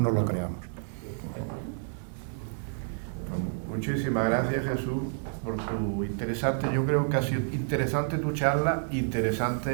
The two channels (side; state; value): left; silent; 58 dB below the other